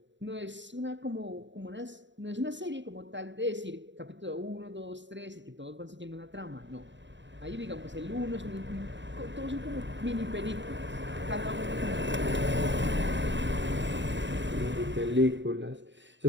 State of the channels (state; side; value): late; left; 0.53 ms